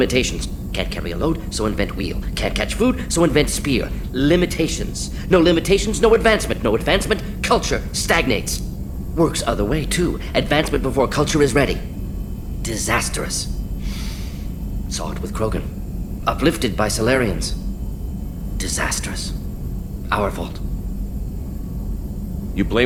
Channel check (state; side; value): identical; both; correlation 1.00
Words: Can't carry a load, so invent wheel. Can't catch food, so invent spear. Limitations. No limitations, no advancement. No advancement, culture stagnates. Works other way, too. Advancement before culture is ready. Disastrous. Saw it with Krogan. Uplifted by Solarians. Disastrous. Our fault. You